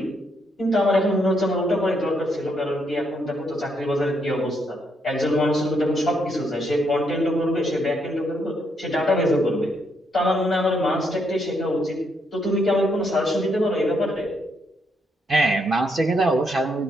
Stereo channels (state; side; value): normal; both; correlation 0.76